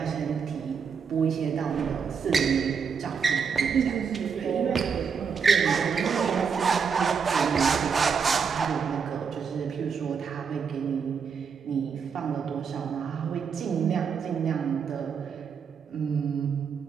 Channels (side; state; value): left; quieter; 6.3 dB